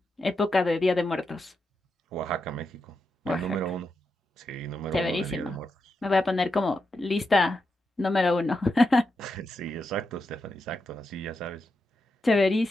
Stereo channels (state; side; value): normal; both; correlation 0.86